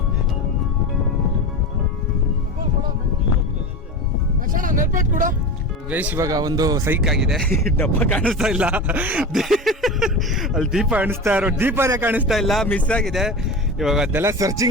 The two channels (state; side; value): normal; both; correlation 0.27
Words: ಗೈಸ್, ಇವಾಗ ಒಂದು ಸೈಕ್ ಆಗಿದೆ. ಡಬ್ಬ ಕಾಣಿಸ್ತಾ ಇಲ್ಲ, ಅಲ್ಲಿ ದೀಪ ಕಾಣಿಸ್ತಾ ಇರೋ ದೀಪನೇ ಕಾಣಿಸ್ತಾ ಇಲ್ಲ, ಮಿಸ್ ಆಗಿದೆ. ಇವಾಗ ಅದೆಲ್ಲ